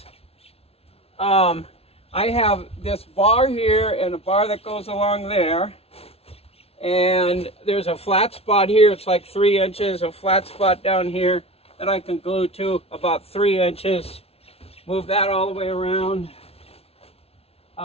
I have this bar here and a bar that goes along there. And there's a flat spot here, it's like 3 inches, a flat spot down here that I can glue to about 3 inches. Move that all the way around.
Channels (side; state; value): right; late; 0.29 ms